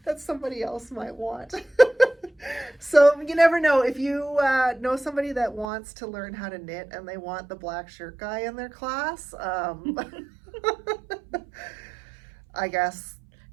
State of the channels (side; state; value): left; drops out; at 5.7 s